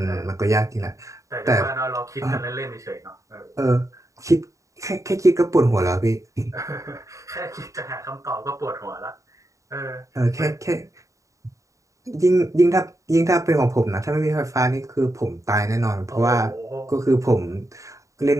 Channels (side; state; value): left; late; 0.16 ms